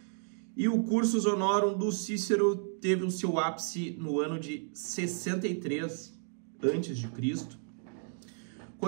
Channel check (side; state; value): left; silent; digital silence